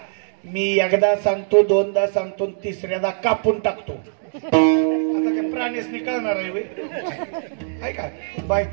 मी एकदा सांगतो, 2दा सांगतो, 3ऱ्यादा कापून टाकतो. आता काय प्राणीच निकळणार आहे होय का?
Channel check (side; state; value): left; silent; digital silence